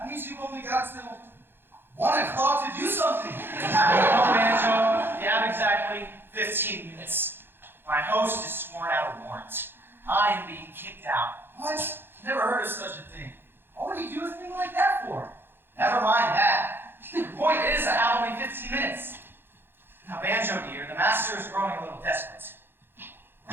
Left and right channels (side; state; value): left; late; 0.10 ms